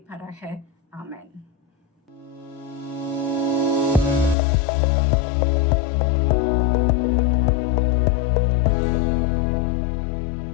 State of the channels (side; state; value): right; drops out; at 4.4 s